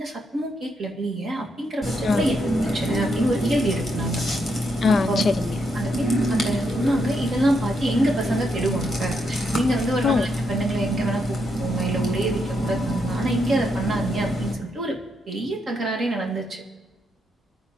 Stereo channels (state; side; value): normal; both; correlation 0.79